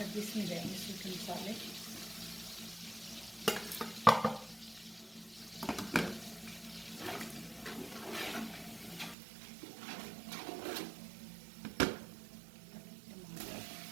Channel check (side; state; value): left; drops out; at 9.2 s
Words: इसमें जाएंगे सूखे मसाले,